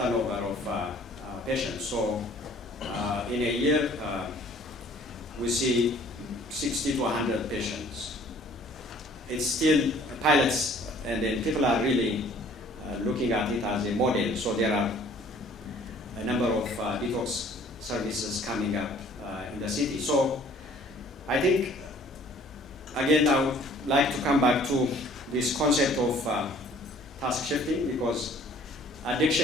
of patients. So in a year, we see 60 to 100 patients. It's still pilots, and then people are really looking at it as a model. So there are a number of detox services coming up in the city. So I think, again, I would like to come back to this concept of task shifting, because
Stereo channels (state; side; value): normal; both; correlation 0.54